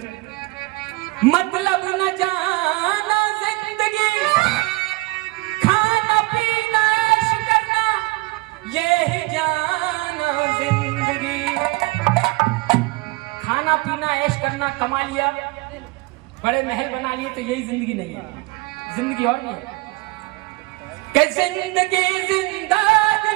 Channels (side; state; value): left; quieter; 23.5 dB